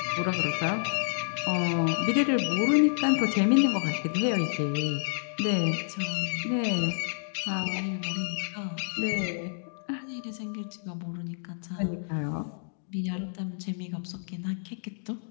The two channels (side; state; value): right; silent; digital silence